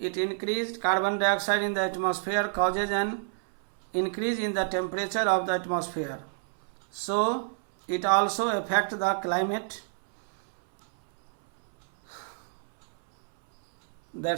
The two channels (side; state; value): left; silent; 59 dB below the other